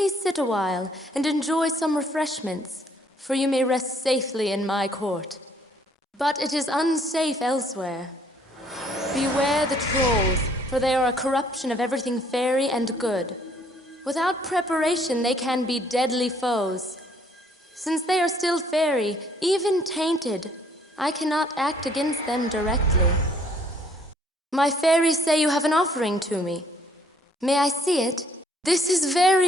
sit a while and enjoy some refreshments, for you may rest safely in my court. But it is unsafe elsewhere. Beware the trolls, for they are a corruption of everything fairy and good. Without preparation, they can be deadly foes. Since they are still fairy, even tainted, I cannot act against them directly. My fairies say you have an offering to me. May I see it? This is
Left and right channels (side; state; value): both; normal; correlation 0.63